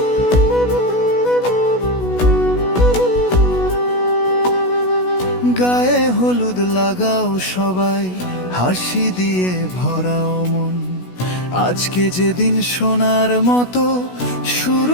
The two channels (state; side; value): late; right; 16 ms